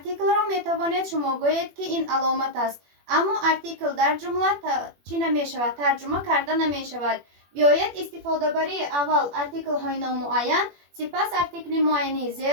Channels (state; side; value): late; left; 21 ms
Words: را میتوانید شما گویید که این علامت است، اما ارتیکل در جمله چی نمی شود؟ ترجمه کرده نمی شود. بیایید استفاده بری اول ارتیکل های نامعین، سپس ارتیکل معینی ز